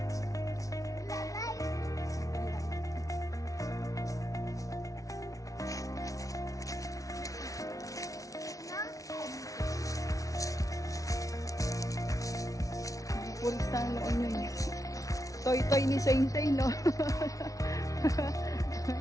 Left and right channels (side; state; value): right; late; 0.17 ms